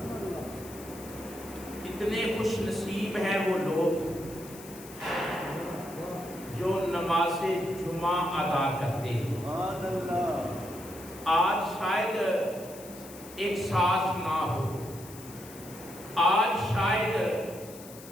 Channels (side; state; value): left; noise; hiss, 17 dB below the sound